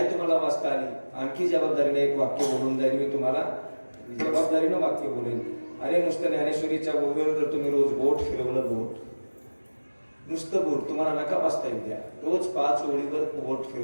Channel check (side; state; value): both; inverted; correlation -1.00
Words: तुम्हाला वाचता आली, आणखी जबाबदारीने एक वाक्य बोलून जाईल मी तुम्हाला, जबाबदारीनं वाक्य बोलेन. अरे नुसतं ज्ञानेश्वरीच्या ओव्यावर जर तुम्ही रोज बोट फिरवलं, बोट नुसतं बोट तुम्हाला नका वाचता येऊ द्या, रोज 5 ओळीवर बोट